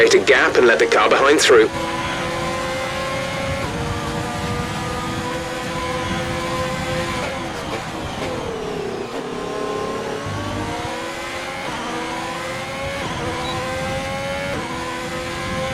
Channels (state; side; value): identical; both; correlation 1.00